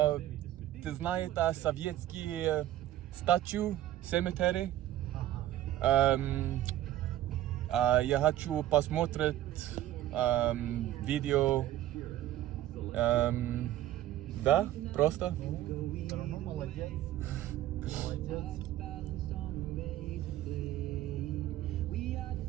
ты знаешь советские статью cemetery? Я хочу посмотреть видео. Да, просто. Все равно молодец. Молодец.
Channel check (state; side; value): quieter; left; 13.6 dB